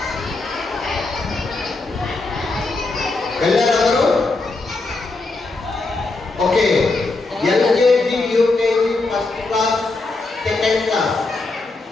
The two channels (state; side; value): quieter; right; 3.4 dB